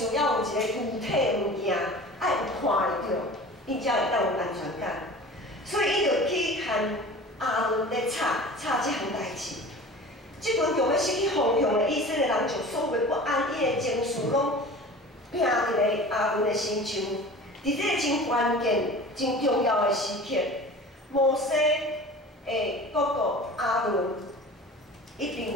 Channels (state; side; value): normal; both; correlation 0.39